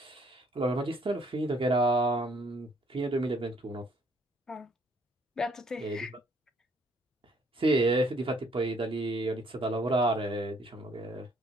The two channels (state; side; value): normal; both; correlation 0.65